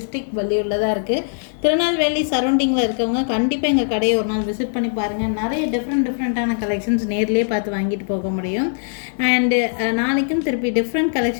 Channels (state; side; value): silent; right; digital silence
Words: வள்ளியூரில் தான் இருக்குது. திருநெல்வேலி சரௌண்டிங்கில் இருக்கவங்க கண்டிப்பாக எங்கள் கடையை ஒரு நாள் விசிட் பண்ணி பாருங்கள். நிறைய டிஃப்ரெண்ட்டான கலெக்ஷன்ஸ் நேர்லேயே பார்த்து வாங்கிட்டு போக முடியும். அண்டு நாளைக்கும் திருப்பி டிஃப்ரெண்ட்